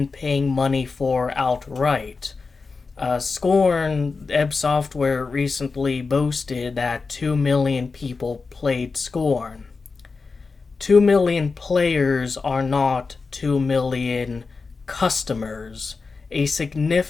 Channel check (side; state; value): right; quieter; 4.4 dB